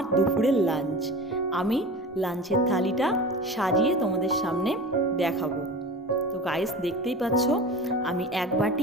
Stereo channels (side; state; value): both; normal; correlation 0.34